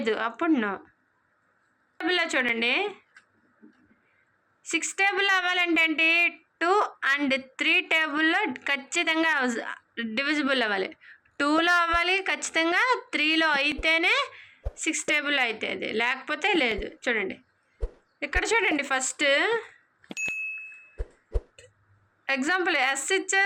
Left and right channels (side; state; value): both; identical; correlation 1.00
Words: అప్పుడు నో. టేబుల్లో చూడండి, 6 టేబుల్లో అవ్వాలంటే ఏంటి? 2 and 3 టేబుల్లో ఖచ్చితంగా డివిజిబుల్ అవ్వాలి. 2లో అవ్వాలి ఖచ్చితంగా, 3లో అయితేనే 6 టేబుల్లో అవుతుంది, లేకపోతే లేదు. చూడండి ఇక్కడ చూడండి, ఫస్ట్ ఎగ్జాంపుల్ ఎస్